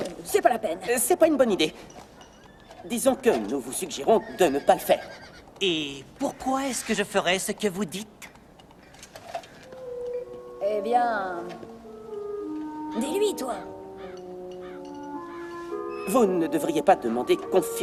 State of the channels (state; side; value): identical; both; correlation 1.00